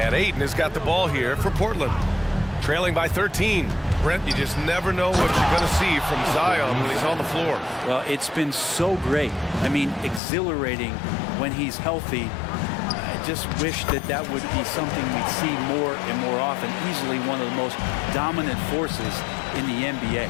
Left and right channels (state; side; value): drops out; right; at 10.2 s